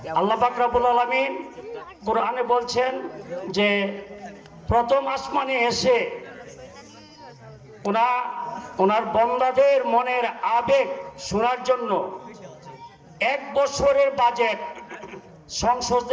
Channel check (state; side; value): identical; both; correlation 1.00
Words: আল্লাহ পাক রব্বুল আলামিন কোরআনে বলছেন যে প্রথম আসমানে এসে ওনার বান্দাদের মনের আবেগ শোনার জন্য 1 বছরের বাজেট,